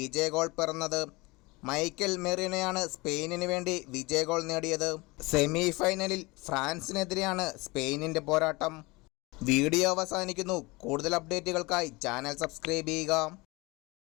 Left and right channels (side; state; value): right; quieter; 24.2 dB